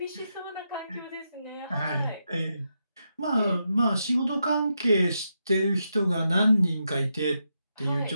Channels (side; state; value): both; inverted; correlation -0.84